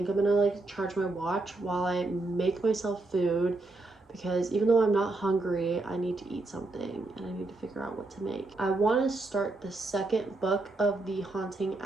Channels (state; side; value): quieter; left; 3.1 dB